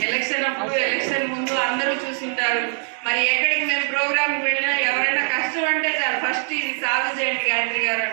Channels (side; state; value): left; silent; 55 dB below the other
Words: ఎలక్షన్ అప్పుడు ఎలక్షన్ ముందు అందరూ చూసింటారు. మరి ఎక్కడికి మేము ప్రోగ్రాంకి వెళ్ళినా ఎవరైనా కష్టం అంటే చాలు ఫస్ట్ ఇది సాధు చేయండి గాయత్రి గారు